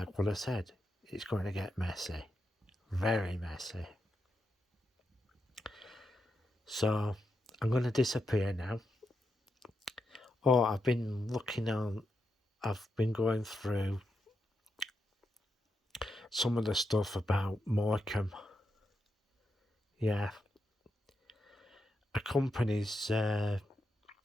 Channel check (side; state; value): both; normal; correlation 0.85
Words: what I said, it's going to get messy, very messy. So I'm going to disappear now. I've been going through some of the stuff about Morecambe. Yeah. A company's